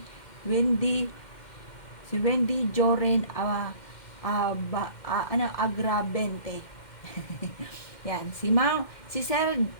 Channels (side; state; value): right; late; 2.1 ms